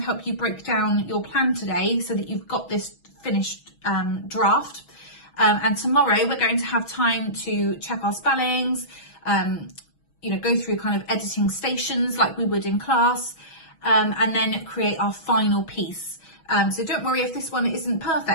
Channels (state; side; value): late; right; 6.2 ms